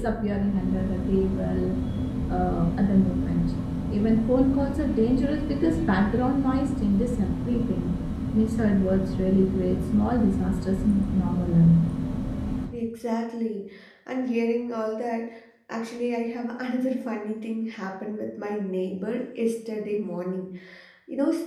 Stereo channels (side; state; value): both; identical; correlation 1.00